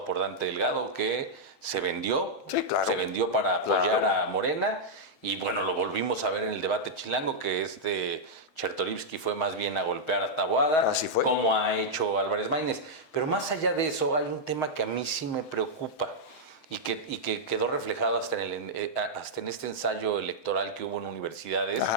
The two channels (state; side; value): late; right; 7.8 ms